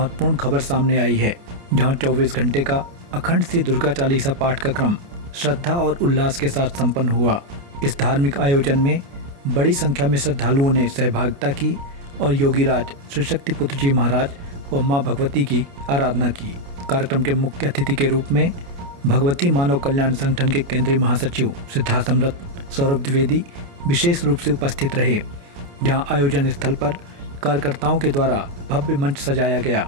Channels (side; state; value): left; late; 29 ms